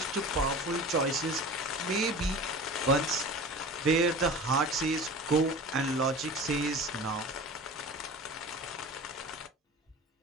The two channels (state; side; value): normal; both; correlation 0.37